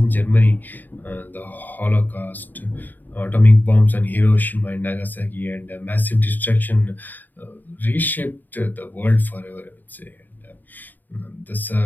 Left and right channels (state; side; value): late; right; 0.088 ms